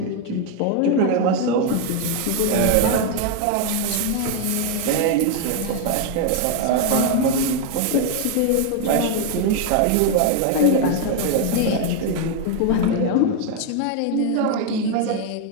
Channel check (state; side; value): different; both; correlation 0.01